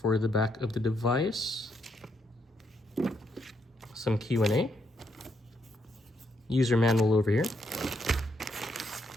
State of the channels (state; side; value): normal; both; correlation 0.77